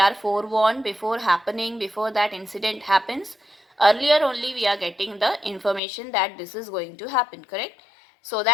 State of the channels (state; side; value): drops out; right; at 5.8 s